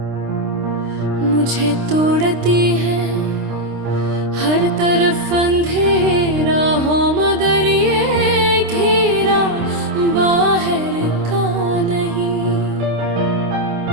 मुझे तोड़ती है हर तरफ अंधेरा हो, मगर ये घेरा बाहर का नहीं।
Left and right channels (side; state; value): left; late; 26 ms